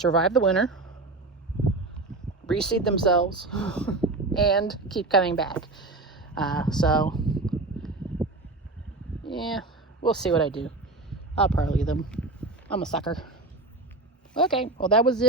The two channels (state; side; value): quieter; left; 3.2 dB